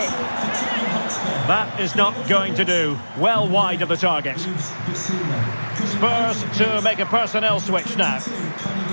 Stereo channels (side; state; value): both; inverted; correlation -1.00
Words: That is not going to do. Well wide of the target. Spurs to make a personnel switch now.